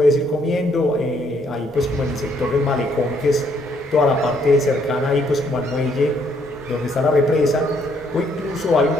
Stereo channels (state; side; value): normal; both; correlation 0.69